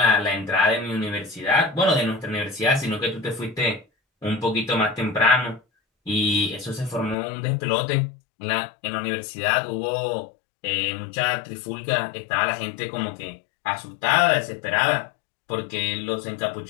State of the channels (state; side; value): drops out; right; at 7.2 s